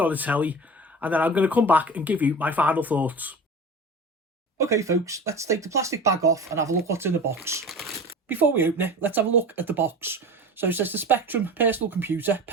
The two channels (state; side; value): normal; both; correlation 0.34